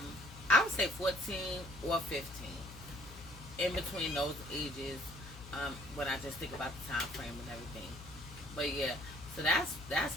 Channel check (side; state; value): left; noise; hum, 15 dB below the sound